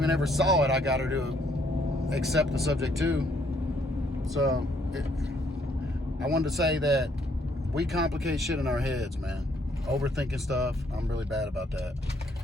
ever saw it, I got her to accept the subject too. So, I wanted to say that we complicate shit in our heads, man. Overthinking stuff. I'm really bad about that.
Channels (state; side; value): normal; both; correlation 0.68